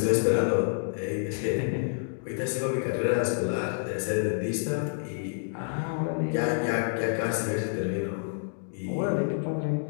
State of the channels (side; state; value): right; silent; digital silence